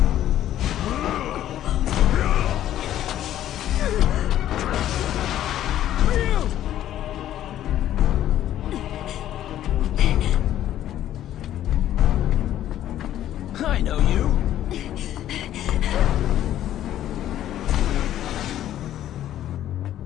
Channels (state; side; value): quieter; right; 12.1 dB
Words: I know you.